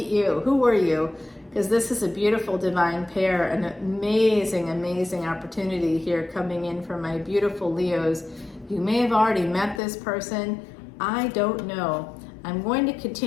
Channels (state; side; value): drops out; right; at 9.8 s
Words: you. Who are you? Because this is a beautiful divine pair, an amazing, amazing opportunity here coming in for my beautiful Leos. You may have already met this person. I don't know. I'm going to